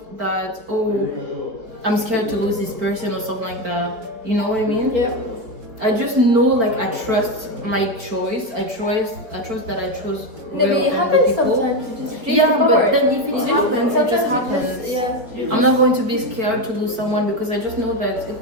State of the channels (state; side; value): late; left; 4.6 ms